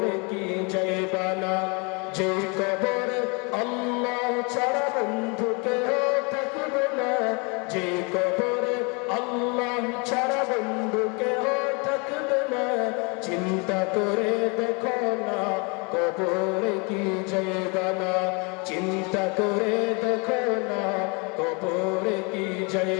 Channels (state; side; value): quieter; right; 31.8 dB